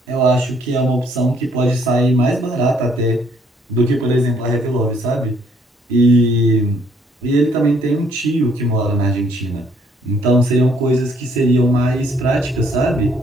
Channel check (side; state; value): both; normal; correlation 0.66